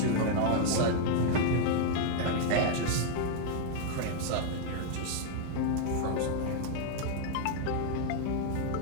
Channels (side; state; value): both; different; correlation 0.00